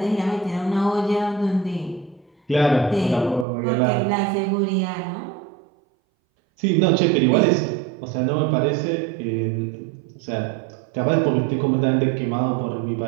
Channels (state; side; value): drops out; left; at 3.5 s